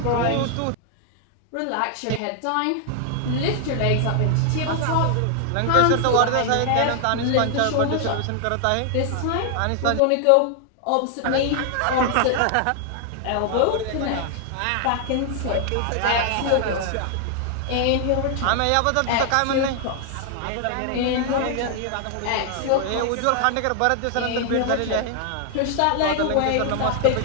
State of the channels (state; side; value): different; both; correlation 0.00